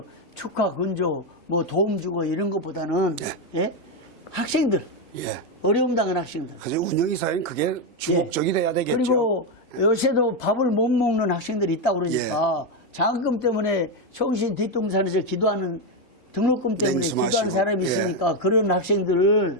축하, 근조, 뭐 도움 주고 이런 것보다는 예? 학생들, 예. 어려움 당한 학생들. 그래서 운영이사는 그게 주목적이 돼야 되겠죠. 그리고 요새도 밥을 못 먹는 학생들이 있다고 그러니까 장학금 때문에 총신 뒷동산에서 기도하는 등록금 때문에 냉수마시고. 기도하는 사람이 있으니까 그런 학생들을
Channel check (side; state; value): both; normal; correlation 0.06